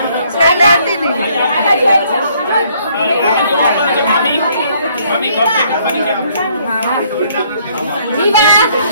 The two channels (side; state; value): both; inverted; correlation -0.65